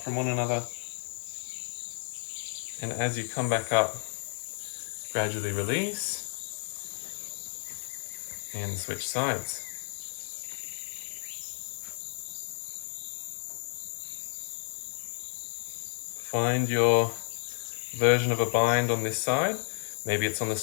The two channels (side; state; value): right; silent; 57 dB below the other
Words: from one another. And as you come back up, gradually release and switch sides. Find your version of a bind on this side. Maybe it's on the